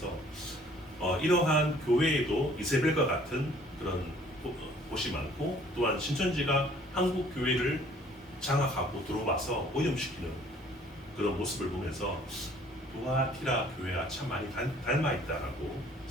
이러한 교회에도 이세벨과 같은 그런 곳이 많고 또한 신천지가 한국 교회를 장악하고 들어와서 오염시키는 그런 모습을 보면서 두아티라 교회와 참 많이 닮아 있다라고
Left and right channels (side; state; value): both; normal; correlation 0.56